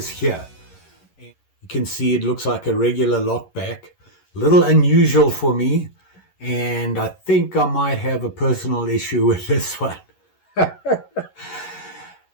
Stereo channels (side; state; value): right; late; 11 ms